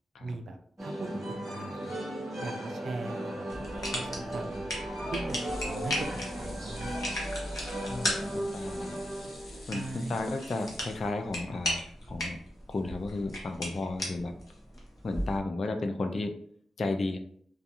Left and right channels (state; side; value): normal; both; correlation 0.86